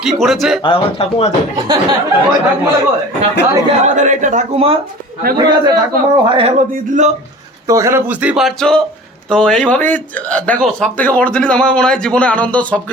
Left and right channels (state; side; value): normal; both; correlation 0.41